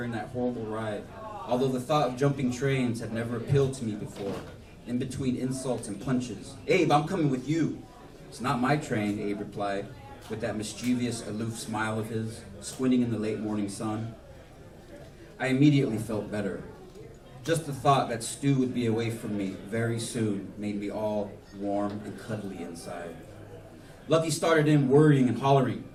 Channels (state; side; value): identical; both; correlation 1.00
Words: that horrible ride, although the thought of jumping trains had never appealed to me before. In between insults and punches, "Abe, I'm coming with you." "It's not my train," Abe replied, with that mischievous, aloof smile of his, squinting in the late morning sun. I immediately felt better. Just the thought that Stu would be away from me very soon made me all warm and cuddly inside. Lucky started in worrying and hollering,